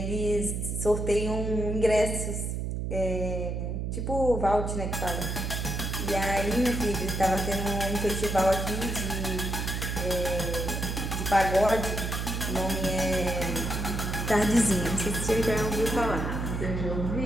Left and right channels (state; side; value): noise; right; hum, 2 dB below the sound